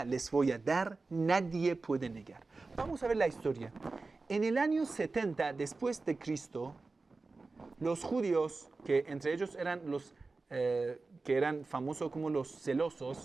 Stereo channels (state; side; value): quieter; left; 3.7 dB